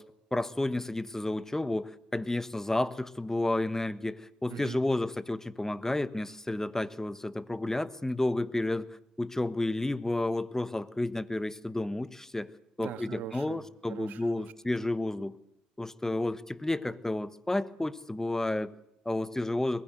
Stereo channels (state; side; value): normal; both; correlation 0.98